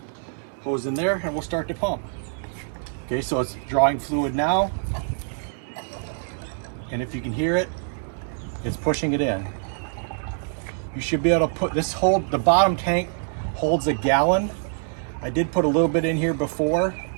hose in there and we'll start to pump. Okay, so it's drawing fluid now. And if you can hear it, it's pushing it in. You should be able to put this the bottom tank holds a gallon. I did put a little bit in here before.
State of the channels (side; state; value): left; silent; 62 dB below the other